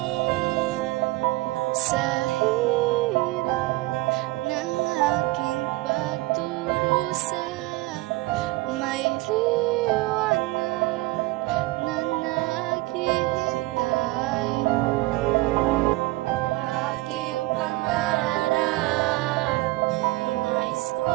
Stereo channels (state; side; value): quieter; left; 20.4 dB